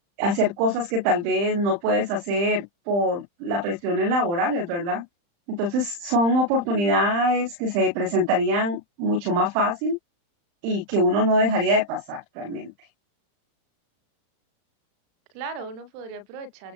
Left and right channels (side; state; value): left; late; 35 ms